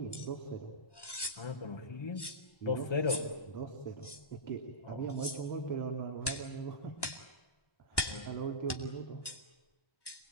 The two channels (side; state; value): right; late; 1.1 ms